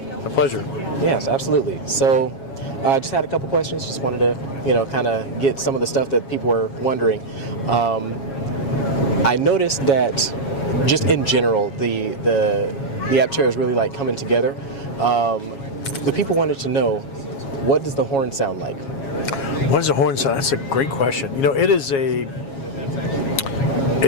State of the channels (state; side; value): late; right; 7.3 ms